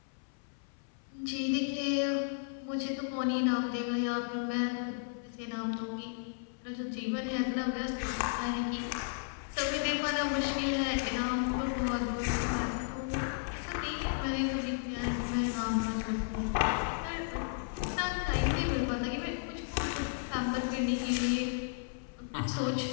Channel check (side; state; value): right; silent; 55 dB below the other